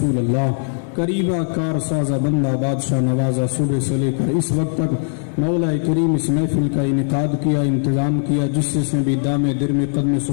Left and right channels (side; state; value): right; silent; digital silence